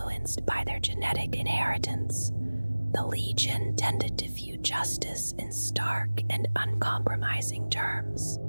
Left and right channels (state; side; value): inverted; both; correlation -1.00